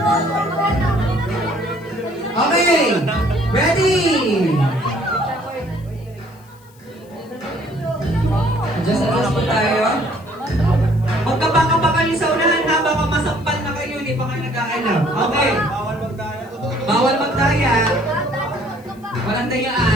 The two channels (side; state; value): left; noise; hiss, 29 dB below the sound